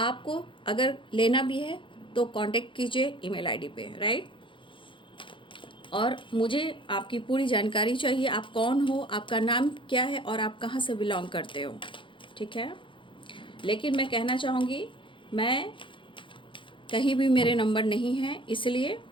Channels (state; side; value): late; right; 0.24 ms